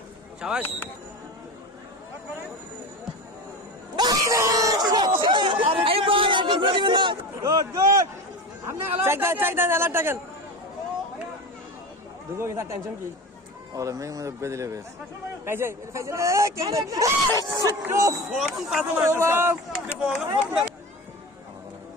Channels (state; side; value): normal; both; correlation 0.28